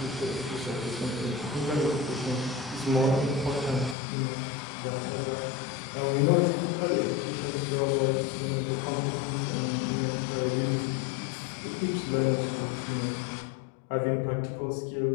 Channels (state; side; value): drops out; right; at 4.0 s